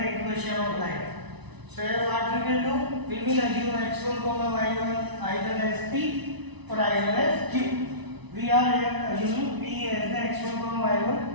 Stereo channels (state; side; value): late; left; 1.0 ms